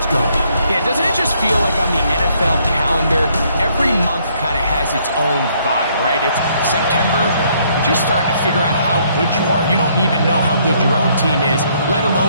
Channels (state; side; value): inverted; both; correlation -0.68